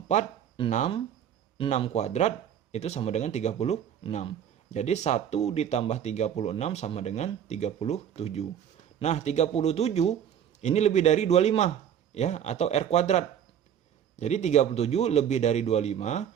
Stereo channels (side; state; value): left; quieter; 9.2 dB